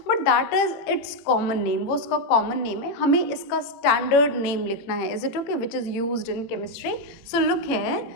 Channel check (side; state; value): right; late; 18 ms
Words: but that is it's common name. वो उसका कॉमन नेम है, हमें इसका स्टैंडर्ड नेम लिखना है। Is it okay? Which is used in chemistry. So look